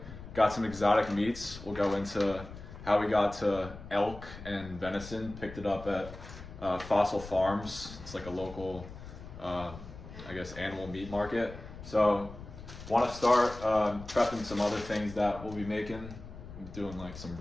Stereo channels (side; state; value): left; noise; rumble, 14 dB below the sound